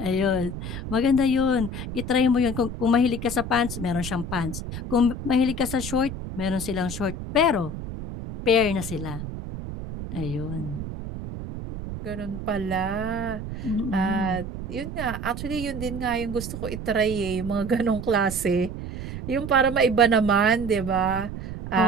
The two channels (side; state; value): right; noise; rumble, 8 dB below the sound